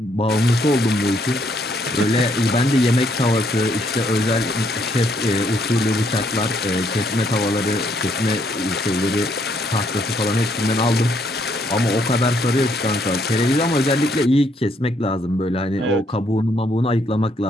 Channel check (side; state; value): both; normal; correlation 0.70